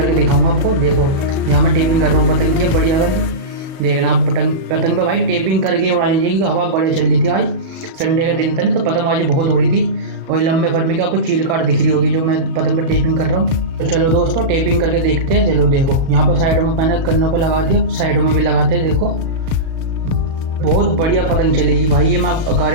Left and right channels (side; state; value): left; late; 37 ms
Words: दिखाऊंगा आपको। देखो यहाँ मैं टेपिंग कर रहा हूँ पतंग की बढ़िया वाली। देखना आप पतंग पे भाई टेपिंग करके उड़ानी चाहिए, क्योंकि हवा बढ़िया चल रही थी आज। संडे का दिन था ना, तो पतंगबाजी बहुत हो रही थी। और लंबे फरमे की आपको चील काट दिख रही होगी जो मैं पतंग पे टेपिंग कर रहा हूँ। तो चलो दोस्तों टेपिंग करके देखते हैं। चलो देखो यहाँ पर साइडों में मैंने कन्नों पर लगा दिया, साइडों में भी लगाते हैं। देखो बहुत बढ़िया पतंग चलेगी भाई, ये मैं